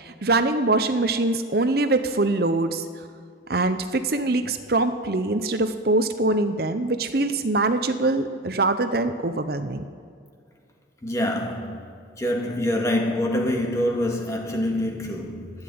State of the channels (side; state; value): both; normal; correlation 0.32